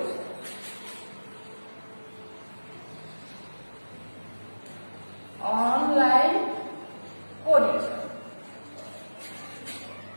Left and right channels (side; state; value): both; inverted; correlation -1.00